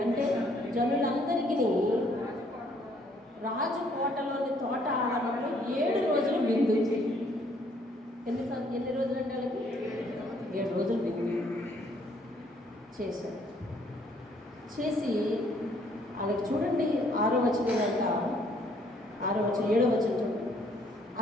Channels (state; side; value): normal; both; correlation 0.65